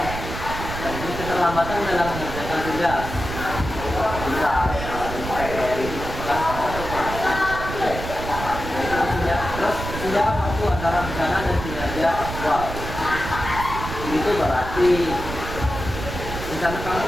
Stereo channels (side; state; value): right; noise; rumble, 7 dB below the sound